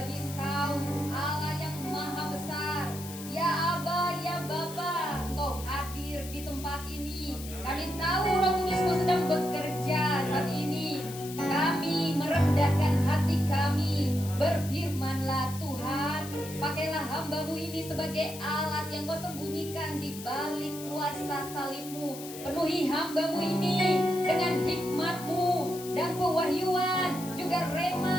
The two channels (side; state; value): left; noise; hiss, 13 dB below the sound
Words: Engkau, Allah yang maha besar. Ya Aba, ya Bapa, Engkau hadir di tempat ini. Kami tahu Roh Kudus-Mu sedang bekerja saat ini. Kami merendahkan hati kami. Berfirmanlah Tuhan, pakailah hamba-Mu ini sebagai alat yang Kau sembunyikan di balik kuasa salib-Mu. Penuhi hamba-Mu ini dengan hikmat-Mu dan pewahyuan, juga